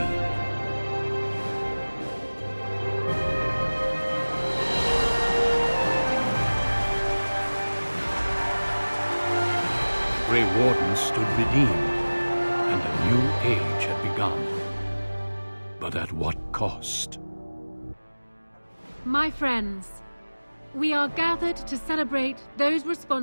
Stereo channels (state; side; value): inverted; both; correlation -1.00